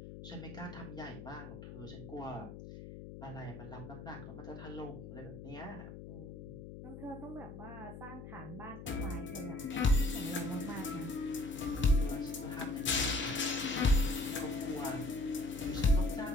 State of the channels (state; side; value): noise; left; hum, 11 dB below the sound